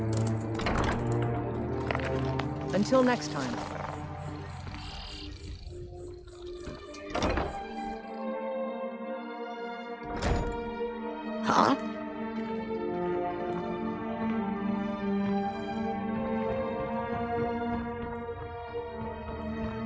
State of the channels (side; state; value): both; identical; correlation 1.00